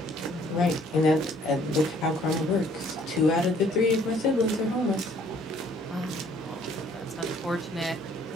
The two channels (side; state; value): both; normal; correlation 0.60